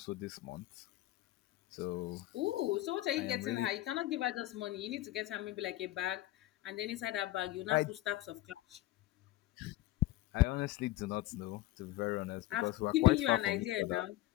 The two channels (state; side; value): quieter; right; 16.6 dB